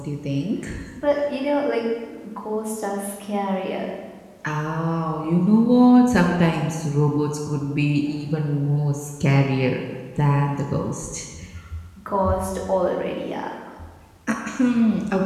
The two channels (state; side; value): identical; both; correlation 1.00